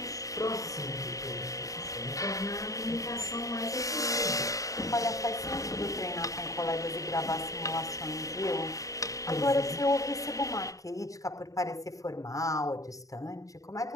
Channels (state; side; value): late; right; 0.16 ms